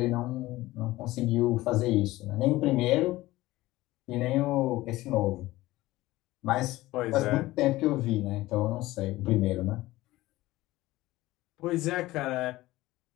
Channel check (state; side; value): quieter; right; 17.8 dB